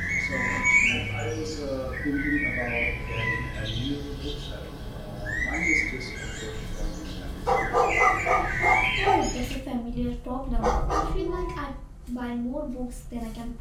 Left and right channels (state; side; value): identical; both; correlation 1.00